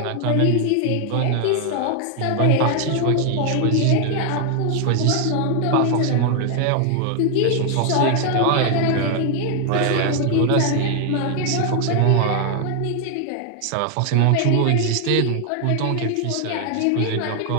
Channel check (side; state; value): both; different; correlation 0.00